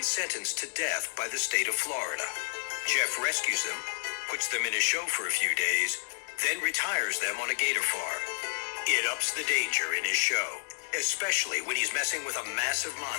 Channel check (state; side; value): silent; right; digital silence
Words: sentenced to death by the state of Florida. Jeff rescues them, puts them in his show for a few days, then retires them on a gator farm. It ups the danger in his show, especially when he's messing with a massive